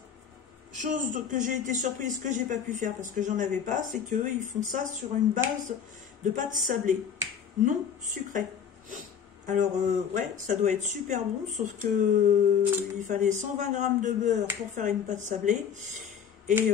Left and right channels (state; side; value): quieter; right; 7.6 dB